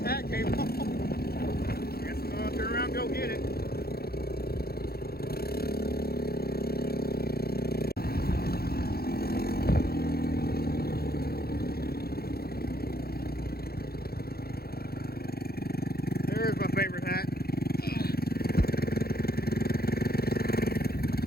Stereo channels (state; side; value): late; right; 0.45 ms